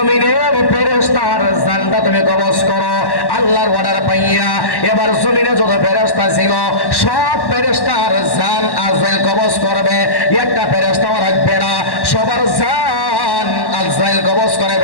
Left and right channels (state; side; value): late; right; 1.1 ms